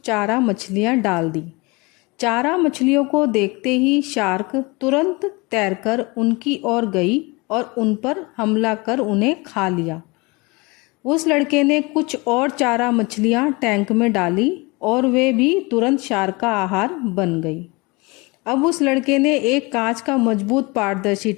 मछलियाँ डाल दी। चारा मछलियों को देखते ही शार्क तुरंत तैरकर उनकी ओर गई और उन पर हमला कर उन्हें खा लिया। उस लड़के ने कुछ और चारा मछलियाँ टैंक में डाली और वे भी तुरंत शार्क का आहार बन गई। अब उस लड़के ने एक कांच का मजबूत पारदर्शी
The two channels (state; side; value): quieter; right; 25.9 dB